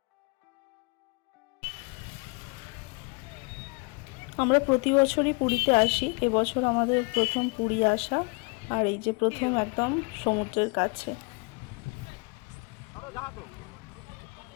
আমরা প্রতি বছরই পুরীতে আসি, এবছর আমাদের প্রথম পুরী আসা। আর এই যে প্রথম একদম সমুদ্রের কাছে।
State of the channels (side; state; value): right; quieter; 31.0 dB